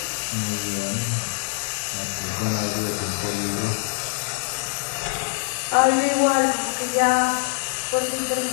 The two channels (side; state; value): right; silent; digital silence